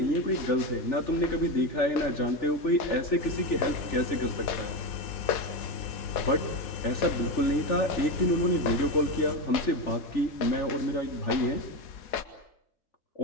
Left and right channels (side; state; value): right; late; 4.1 ms